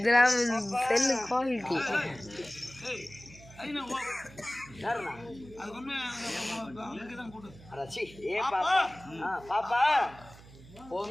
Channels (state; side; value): noise; right; hum, 20 dB below the sound